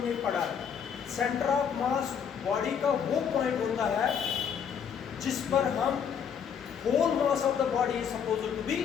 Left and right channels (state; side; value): quieter; right; 7.5 dB